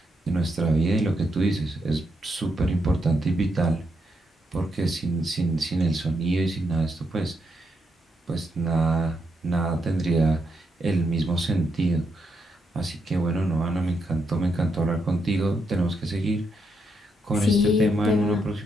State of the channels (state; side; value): normal; both; correlation 0.80